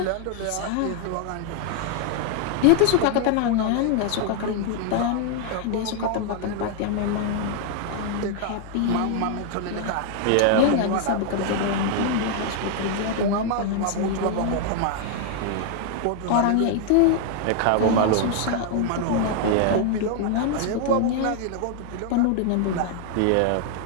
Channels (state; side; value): different; both; correlation 0.00